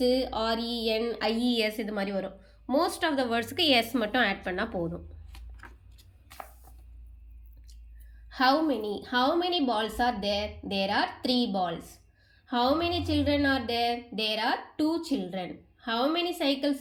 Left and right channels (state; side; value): identical; both; correlation 1.00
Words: ஆர்இஎன், ஐஇஎஸ் இது மாதிரி வரும். மோஸ்ட் ஆஃப் த வேர்ட்ஸுக்கு எஸ் மட்டும் ஆட் பண்ணால் போதும். How many balls are there? There are 3 balls. How many children are there? There are 2 children. How many cycles